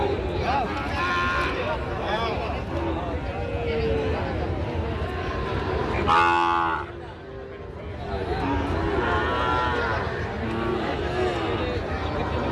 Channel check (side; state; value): both; identical; correlation 1.00